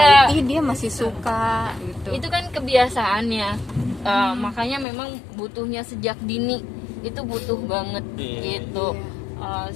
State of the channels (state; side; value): drops out; right; at 4.9 s